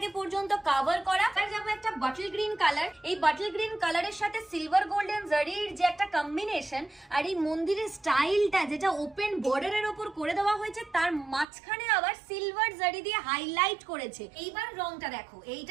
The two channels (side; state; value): left; drops out; at 11.5 s